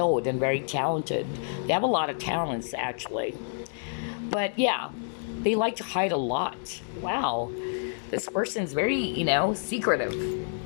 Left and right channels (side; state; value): right; silent; digital silence